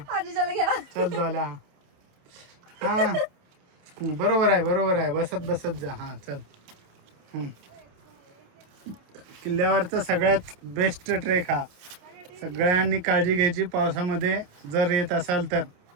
आजीच्याला घ्या. चल डोल्या. हा बरोबर आहे बरोबर आहे. बसत बसत जा. हा चल. किल्ल्यावरचा सगळ्यात बेस्ट ट्रेक हा. सगळ्यांनी काळजी घ्यायची. पावसामध्ये जर येत असाल तर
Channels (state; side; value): late; left; 28 ms